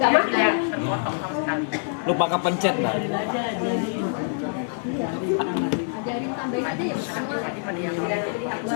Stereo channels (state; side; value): silent; right; digital silence